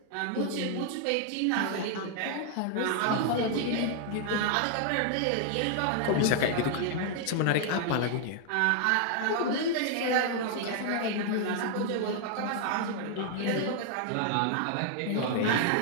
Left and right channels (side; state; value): both; different; correlation 0.00